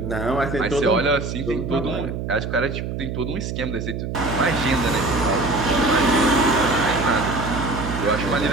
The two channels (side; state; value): right; noise; hum, 5 dB below the sound